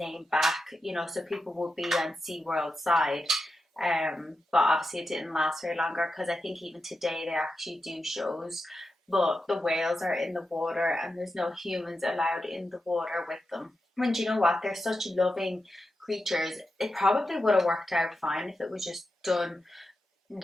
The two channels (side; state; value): both; normal; correlation 0.89